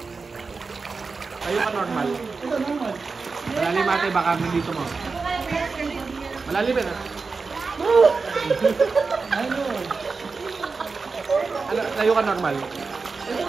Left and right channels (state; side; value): quieter; left; 4.4 dB